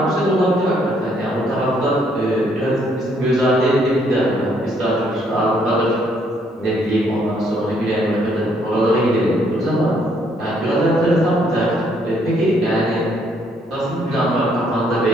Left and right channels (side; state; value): both; normal; correlation 0.69